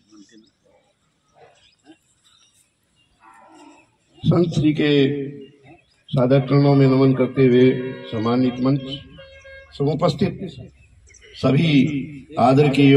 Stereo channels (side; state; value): both; identical; correlation 1.00